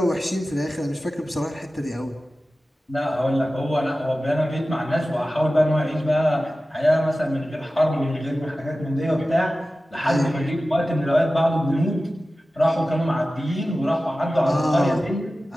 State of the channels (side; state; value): both; normal; correlation 0.95